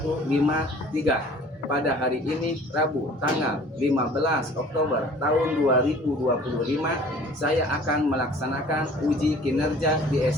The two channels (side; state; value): both; normal; correlation 0.49